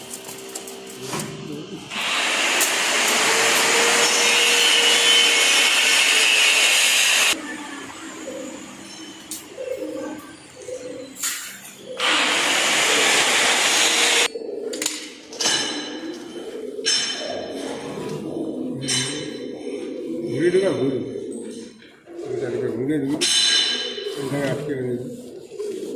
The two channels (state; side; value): identical; both; correlation 1.00